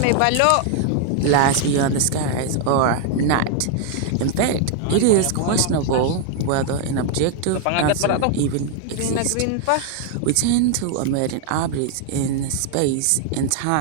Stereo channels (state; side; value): different; both; correlation 0.00